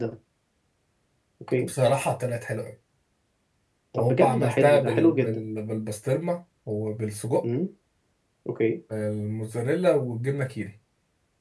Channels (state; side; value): identical; both; correlation 1.00